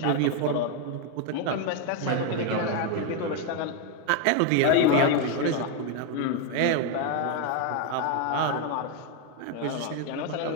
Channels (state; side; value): different; both; correlation 0.01